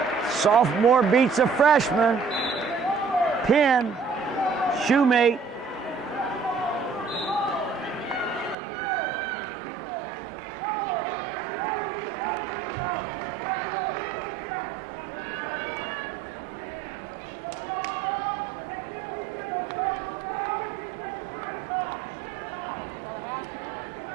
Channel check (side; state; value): left; drops out; at 8.6 s